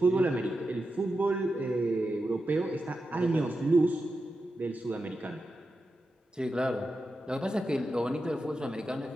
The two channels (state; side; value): normal; both; correlation 0.90